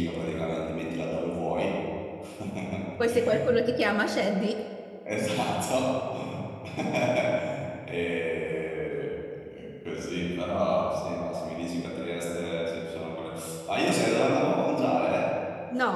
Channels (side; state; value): both; identical; correlation 1.00